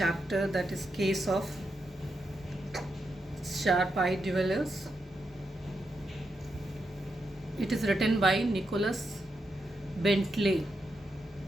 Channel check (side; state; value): both; normal; correlation 0.84